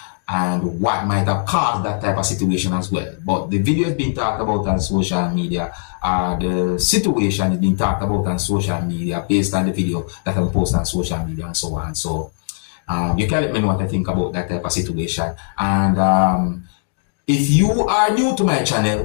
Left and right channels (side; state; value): right; silent; digital silence